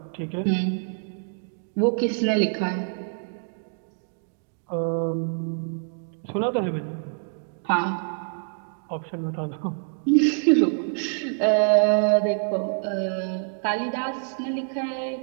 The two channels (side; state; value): left; silent; digital silence